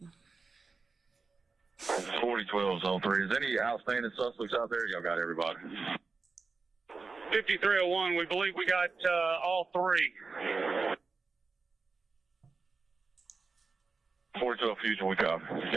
4012 is on 3. Is any outstanding suspects out there? Y'all got everybody. 5301, we believe we got all 3. 4012 Fusion, we copy.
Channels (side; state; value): left; quieter; 4.3 dB